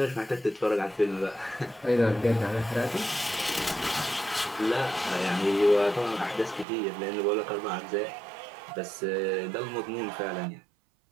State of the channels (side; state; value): left; drops out; at 6.7 s